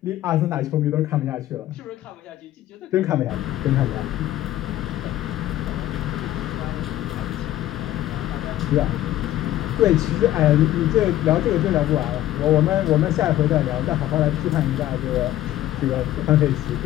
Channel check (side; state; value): right; quieter; 13.8 dB